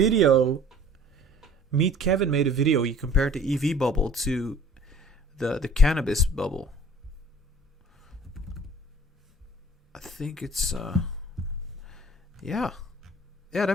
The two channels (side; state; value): both; normal; correlation 0.49